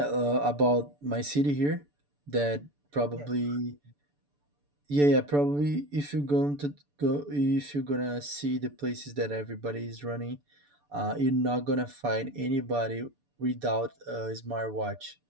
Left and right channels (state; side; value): late; left; 6.9 ms